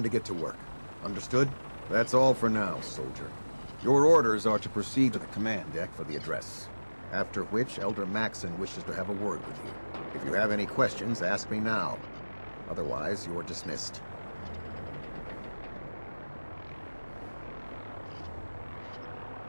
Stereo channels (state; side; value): inverted; both; correlation -1.00